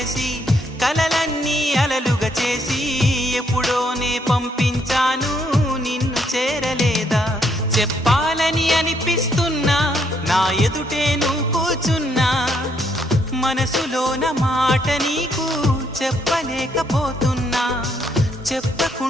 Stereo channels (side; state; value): both; normal; correlation 0.72